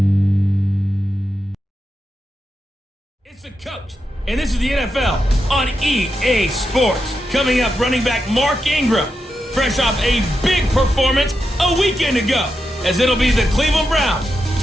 It's the coach, and this is the NFL on EA Sports. Coming up, running back Mark Ingram, fresh off a big performance a weekend ago, as it'll be the Cleveland Browns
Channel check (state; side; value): normal; both; correlation 0.87